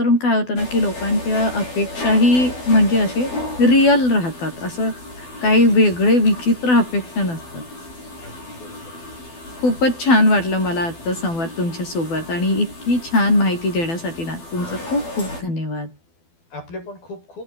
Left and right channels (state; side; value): late; right; 12 ms